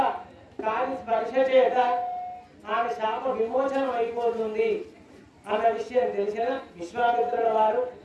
కాని స్పర్శ చేత ఆమె శాప విమోచనం అయిపోతుంది అన్న విషయం తెలిసిన విశ్వామిత్రుల వారు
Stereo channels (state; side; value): identical; both; correlation 1.00